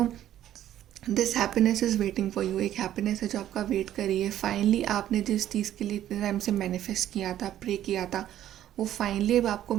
this happiness is waiting for you. एक हैप्पीनेस है जो आपका वेट कर रही है. फाइनली आपने जिस चीज़ के लिए इतने टाइम से मैनिफेस्ट किया था, प्रे किया था, वो फाइनली अब आपको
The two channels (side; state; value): left; quieter; 12.1 dB